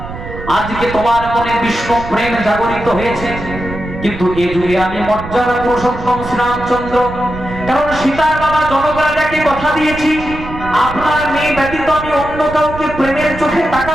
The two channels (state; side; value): noise; right; rumble, 11 dB below the sound